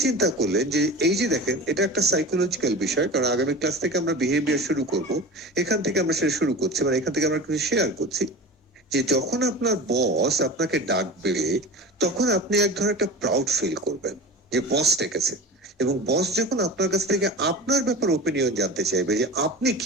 চিন্তা করলেন যে এই যে দেখেন এটা একটা সাইকোলজিক্যাল বিষয়, কারণ আগামী ক্লাস থেকে আমরা বিহেভিয়ার শুরু করব, এখান থেকে আমরা সেটা শুরু করছি, মানে এখান থেকে আমরা কিছু শেয়ার করছি যে যখন আপনার বস আপনাকে ডাকবে তখন আপনি এক ধরনের একটা প্রাউড ফিল করবেন যে বস ডেকেছে, এবং বস যখন আপনার কাছ থেকে আপনার ব্যাপারে ওপিনিয়ন জানতে চাইবে যে আপনি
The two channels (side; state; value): both; normal; correlation 0.33